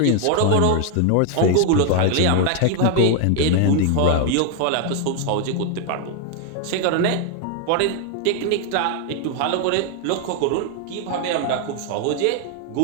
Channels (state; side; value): different; both; correlation 0.00